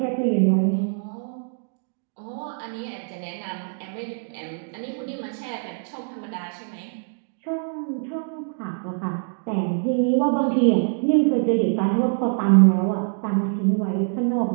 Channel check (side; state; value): left; silent; 62 dB below the other